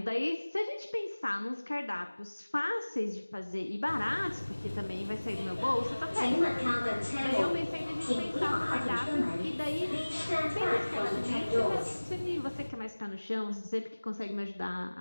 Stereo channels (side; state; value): both; inverted; correlation -1.00